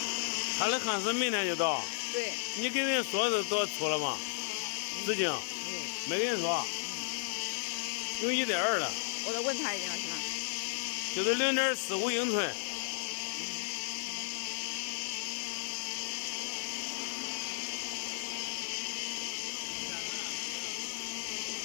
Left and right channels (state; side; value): silent; right; 55 dB below the other